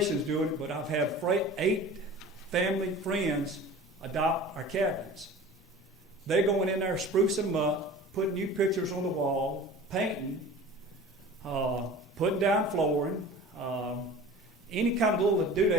doing it, but I've had 8 family friends adopt our cabins. They're going in there, sprucing them up, putting new pictures on the wall, painting, putting down flooring, any kind of little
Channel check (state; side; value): normal; both; correlation 0.40